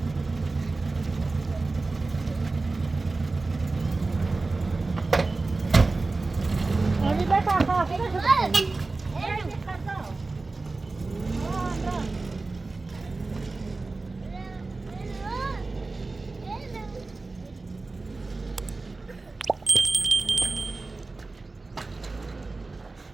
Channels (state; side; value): quieter; left; 3.5 dB